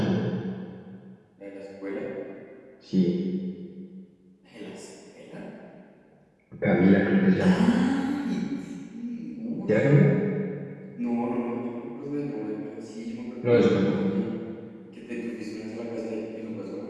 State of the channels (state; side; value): identical; both; correlation 1.00